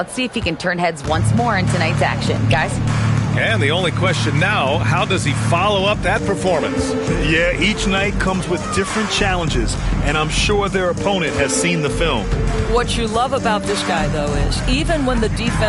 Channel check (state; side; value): identical; both; correlation 1.00